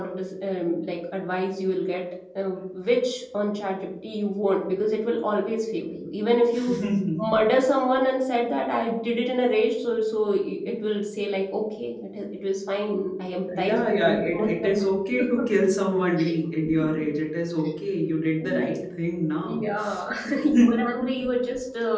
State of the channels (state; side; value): identical; both; correlation 1.00